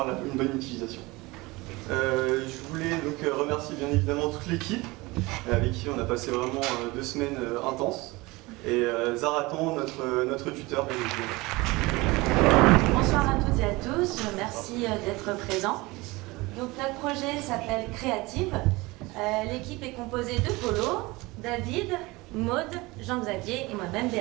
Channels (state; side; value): quieter; left; 22.5 dB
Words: une bonne utilisation. Je voulais donc remercier bien évidemment toute l'équipe avec qui on a passé vraiment 2 semaines intenses, et Zaratan, notre tuteur. Bonsoir à toutes et à tous, merci d'être présents. Donc notre projet s'appelle Créative. L'équipe est composée de Polo, David, Maude, Jean-Xavier et moi-même